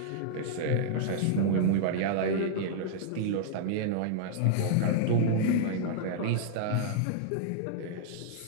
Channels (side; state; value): both; different; correlation -0.02